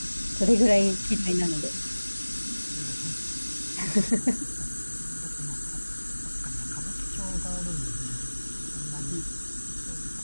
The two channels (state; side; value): inverted; both; correlation -1.00